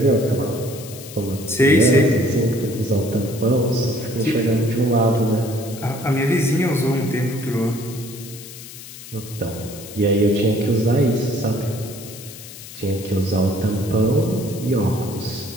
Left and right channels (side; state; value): left; noise; hiss, 15 dB below the sound